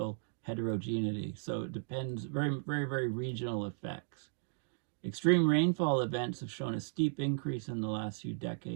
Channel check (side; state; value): left; silent; digital silence